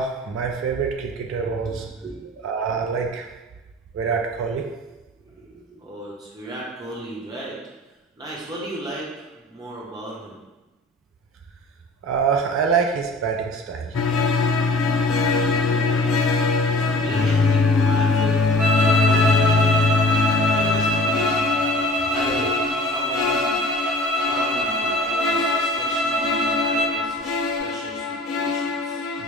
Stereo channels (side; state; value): both; normal; correlation 0.44